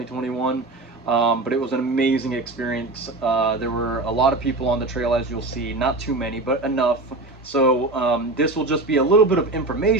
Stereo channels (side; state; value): left; quieter; 3.0 dB